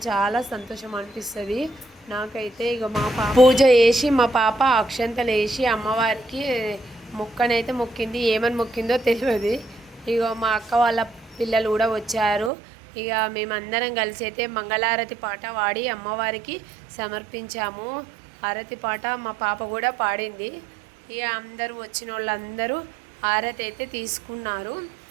చాలా సంతోషం అనిపిస్తుంది నాకైతే. ఇక మా పాప పూజ చేసి మా పాప అక్షంతలు వేసి అమ్మవారికి మొక్కనైతే మొక్కింది. ఏమని మొక్కిందో తెలియదు. ఇక మా అక్క వాళ్ళ పిల్లలు కూడా వచ్చారు. ఇక మేమందరం కలిసి అయితే మంగళారతి పాట పాడి అమ్మవారికి సమర్పించాము. హారతి పాట మా పాప కూడా పాడింది. ఇక అందరూ వచ్చిన వాళ్ళందరూ హారతి అయితే తీసుకున్నారు.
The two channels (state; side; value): drops out; left; at 12.5 s